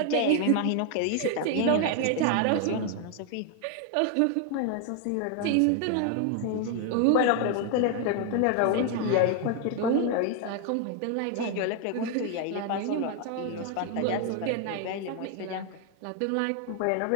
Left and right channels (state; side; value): different; both; correlation 0.00